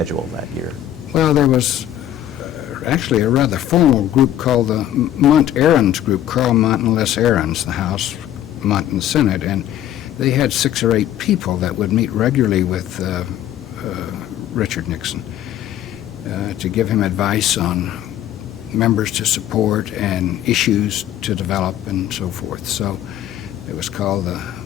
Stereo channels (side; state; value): right; quieter; 11.7 dB